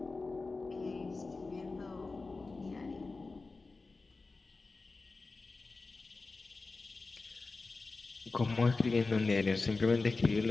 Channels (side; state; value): right; quieter; 3.8 dB